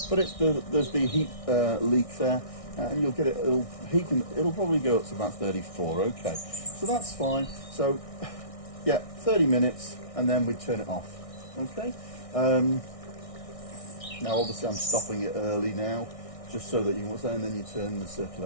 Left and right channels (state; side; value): late; right; 1.6 ms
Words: there's the heat leak there, and you'll get it. It'll probably go up to about 34. Okay, so that's fine. So yeah, 30 minutes, and then we turn it off. Okay. Now obviously I'm stopping it early now, just so that you can, and then you turn the